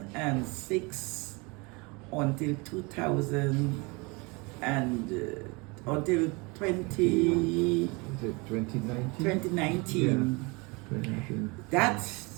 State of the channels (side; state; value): left; quieter; 27.6 dB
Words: until 2000 and until 2019. Is it 2019? 2019. Yeah. 2019. That